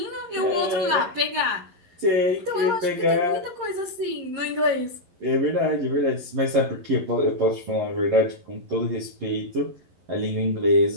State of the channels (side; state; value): left; late; 11 ms